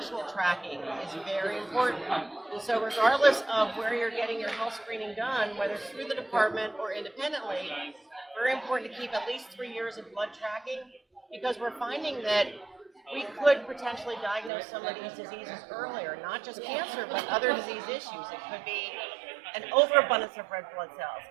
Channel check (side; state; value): left; drops out; at 14.5 s